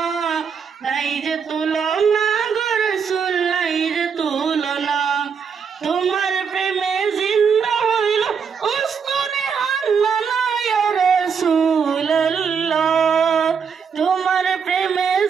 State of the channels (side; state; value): left; quieter; 6.4 dB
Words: নাই যে তুলনা গো রাসূল, নাই যে তুলনা। তোমার প্রেমে জিন্দা হইল উস্তুনে হান্নানা ইয়া রাসূলুল্লাহ, তোমার প্রেমে